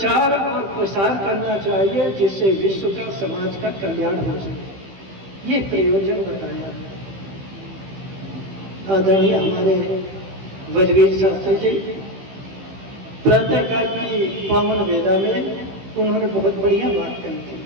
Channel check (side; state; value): left; late; 15 ms